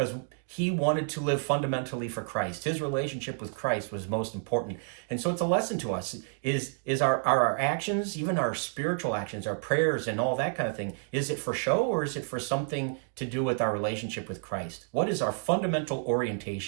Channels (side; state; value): left; silent; 58 dB below the other